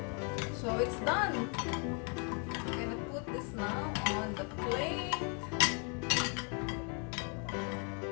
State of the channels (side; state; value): right; quieter; 37.9 dB